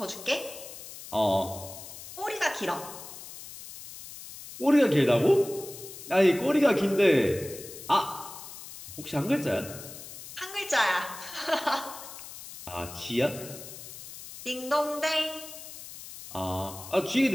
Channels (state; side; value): noise; left; hiss, 13 dB below the sound